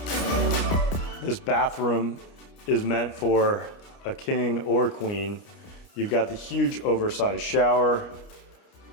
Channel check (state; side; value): late; right; 29 ms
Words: This bathroom is meant for a king or queen. You've got the huge oversized shower,